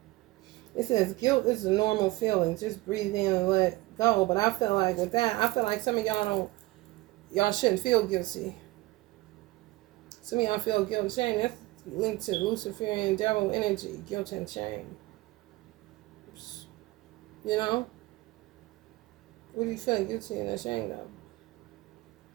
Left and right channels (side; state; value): left; quieter; 20.2 dB